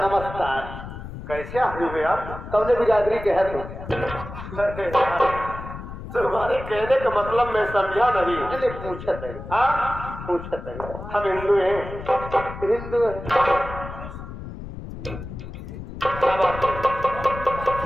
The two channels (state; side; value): noise; left; rumble, 10 dB below the sound